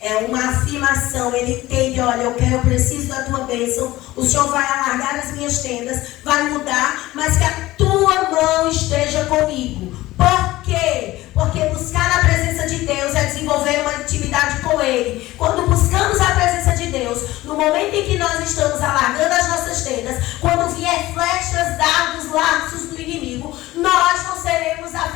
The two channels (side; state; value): right; quieter; 17.5 dB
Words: uma afirmação, ele entende, olha, eu preciso da tua bênção, o Senhor vai alargar as minhas tendas, vai mudar, mas que a tua mão esteja comigo. Por quê? Porque buscar a presença de Deus é desenvolver uma intimidade com Ele. Quando buscamos a presença de Deus, no momento em que nós estamos alargando as nossas tendas, quando vier flechas, dardos, laços do inimigo, nós não seremos